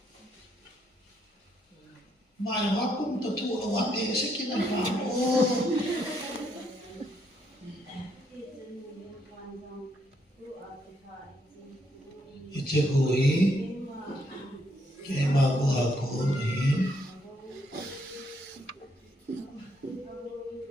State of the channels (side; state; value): both; normal; correlation 0.74